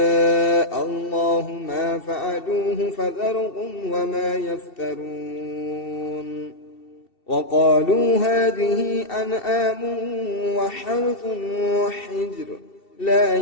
الله ما فعلوه فذرهم وما يفترون وقالوا هذه أنعام وحرث وحجر لا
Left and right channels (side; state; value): right; late; 2.7 ms